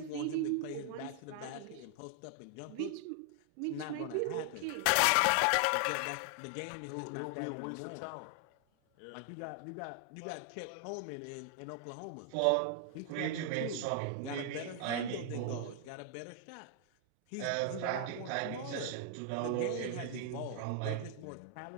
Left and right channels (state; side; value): different; both; correlation 0.00